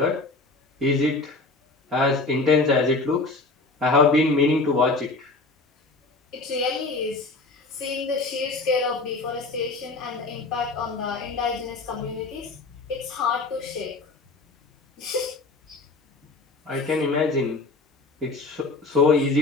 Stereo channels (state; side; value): quieter; right; 3.4 dB